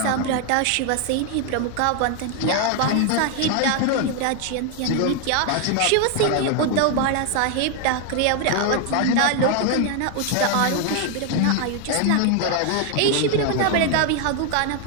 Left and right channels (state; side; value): different; both; correlation 0.01